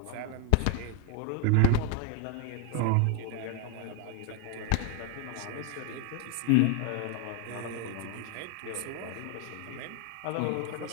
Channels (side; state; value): both; different; correlation 0.00